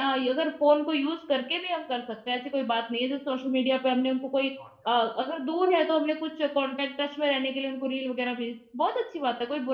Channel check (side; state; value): both; identical; correlation 1.00